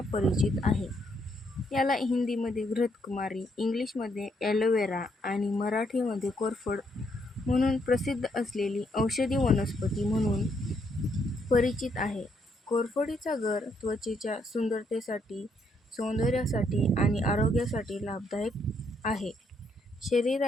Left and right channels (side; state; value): both; normal; correlation 0.74